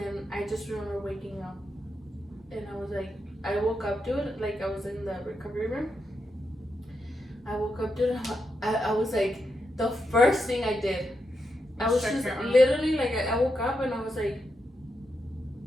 I just remember waking up, and I was like, I woke up, dude, like I was in the recovery room. I woke up, dude. I was like, the first thing I did, I was just literally like, I woke up and I was like,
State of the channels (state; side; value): normal; both; correlation 0.84